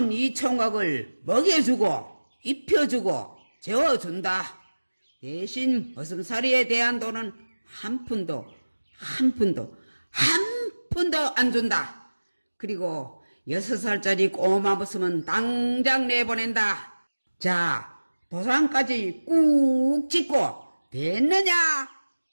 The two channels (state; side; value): inverted; both; correlation -1.00